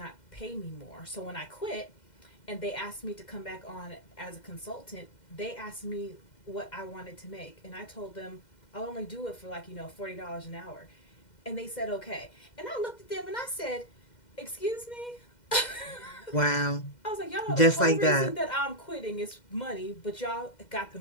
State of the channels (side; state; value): right; late; 2.1 ms